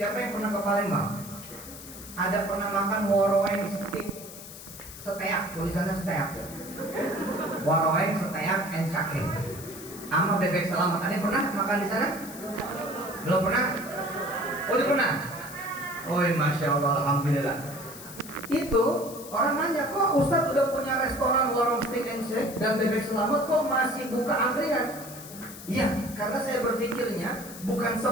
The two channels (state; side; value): noise; left; hiss, 14 dB below the sound